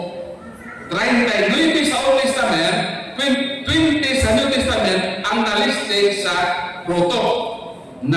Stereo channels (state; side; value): identical; both; correlation 1.00